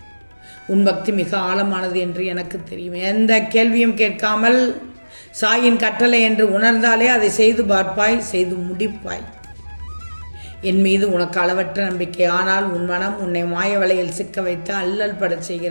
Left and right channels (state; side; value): inverted; both; correlation -1.00